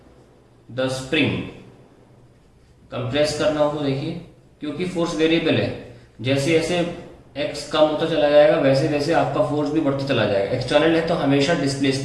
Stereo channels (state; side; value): identical; both; correlation 1.00